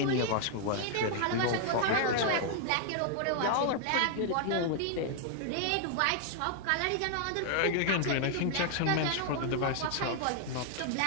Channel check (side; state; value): both; different; correlation 0.00